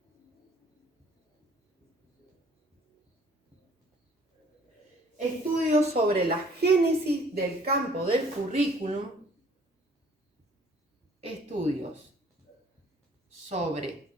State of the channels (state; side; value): normal; both; correlation 0.57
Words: estudios sobre la génesis del campo del currículum, estudios sobre